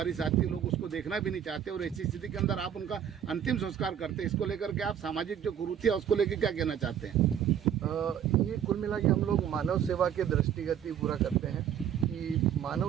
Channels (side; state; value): left; quieter; 9.2 dB